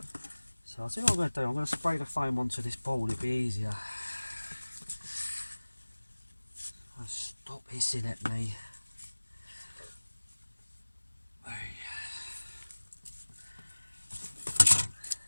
So I'll see what I'm going to do. I'm going to spray the foam onto this board, it'll be easier. Oh, stop hissing at me.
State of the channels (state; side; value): inverted; both; correlation -1.00